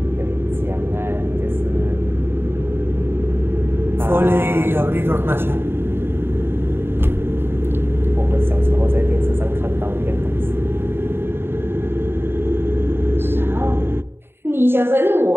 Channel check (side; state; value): left; late; 0.11 ms